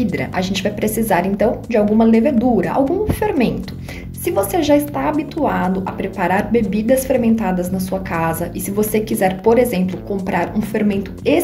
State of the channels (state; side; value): identical; both; correlation 1.00